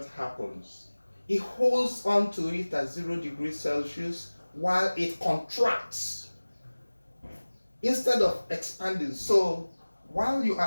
happens. It holds on to it at 0 degrees Celsius while it contracts instead of expanding. So while you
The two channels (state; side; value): inverted; both; correlation -1.00